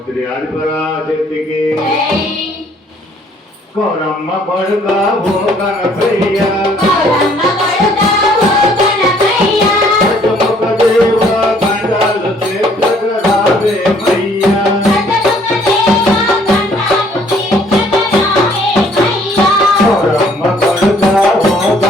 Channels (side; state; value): both; normal; correlation 0.61